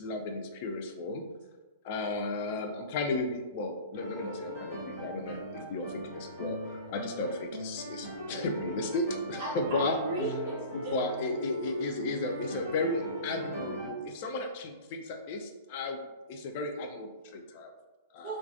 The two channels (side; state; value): both; inverted; correlation -0.37